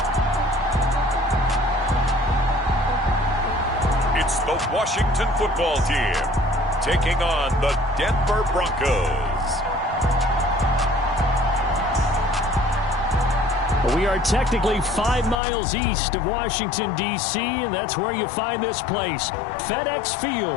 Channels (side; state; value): right; drops out; at 15.4 s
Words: It's the Washington football team taking on the Denver Broncos. We are technically 5 miles east of Washington, D.C., and that's where you find this place, FedEx